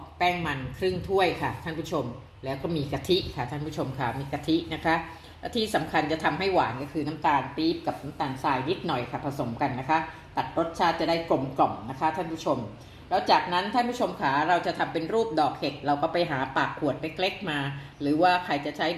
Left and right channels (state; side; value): identical; both; correlation 1.00